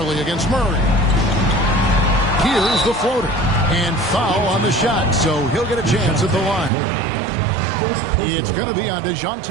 against Murray. Here's the floater. And foul on the shot, so he'll get a chance at the line. It's going to be on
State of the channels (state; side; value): drops out; left; at 6.7 s